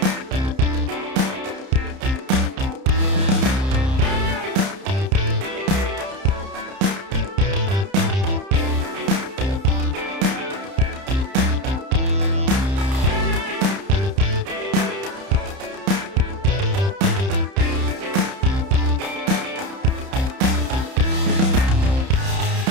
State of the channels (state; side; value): late; left; 31 ms